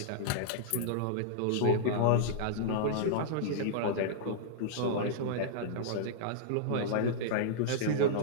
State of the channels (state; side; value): different; both; correlation -0.02